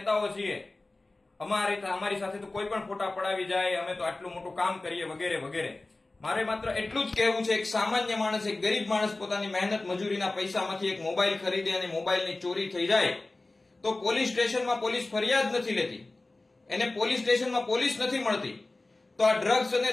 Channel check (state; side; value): quieter; right; 3.0 dB